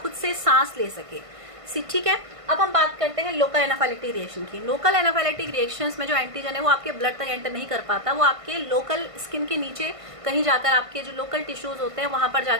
से सांस ले सके। ठीक है, अब हम बात करते हैं लोकल एनाफाइलेक्टिक रिएक्शन की। लोकल एनाफाइलेक्टिक रिएक्शंस में जो एंटीजन है वो आपके ब्लड तक एंटर नहीं कर पाता, वो आपके लोकल स्किन के नीचे कहीं जाकर आपके जो लोकल टिश्यूज होते हैं वहां पर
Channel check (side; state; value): left; late; 1.5 ms